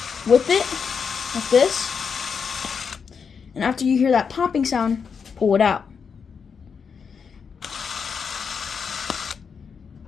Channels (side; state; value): right; quieter; 6.2 dB